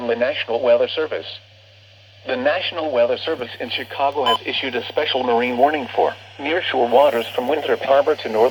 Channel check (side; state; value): both; identical; correlation 1.00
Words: the National Weather Service. The National Weather Service in Chicago has issued a special marine warning for nearshore waters from Winthrop Harbor to